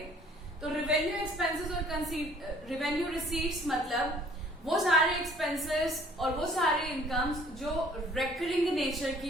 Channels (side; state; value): both; normal; correlation 0.56